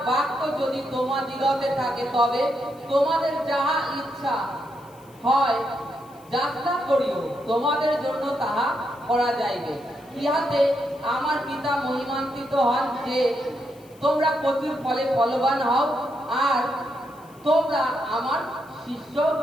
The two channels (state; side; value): noise; left; hiss, 28 dB below the sound